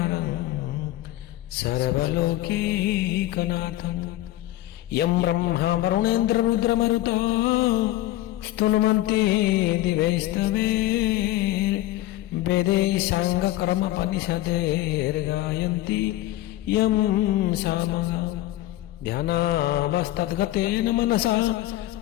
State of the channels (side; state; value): right; quieter; 15.6 dB